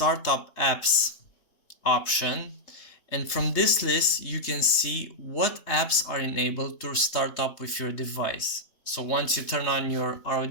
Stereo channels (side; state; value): right; late; 3.2 ms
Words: apps option, and from this list you can see what apps are enabled to start up with your device. So once you turn on your